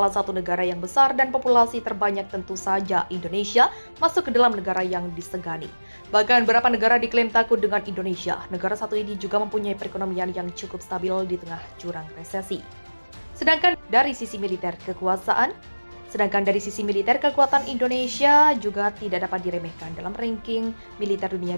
satu negara yang besar dan populasi terbanyak tentu saja Indonesia masuk ke dalam negara yang disegani. Bahkan beberapa negara diklaim takut dengan Indonesia. Negara satu ini juga mempunyai perekonomian yang cukup stabil di tengah jurang resesi. Sedangkan dari sisi militer kekuatan Indonesia juga tidak dapat diremehkan dalam ranking militer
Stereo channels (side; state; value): both; inverted; correlation -1.00